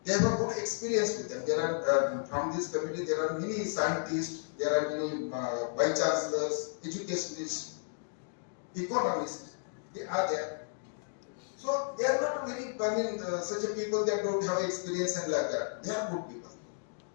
They have a good experience with them. There are from this committee there are many scientists, there are many vice chancellors, educationists, economists. They are there. So they are not very, such a people that don't have experience and like that. They are good people.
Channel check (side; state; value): right; silent; digital silence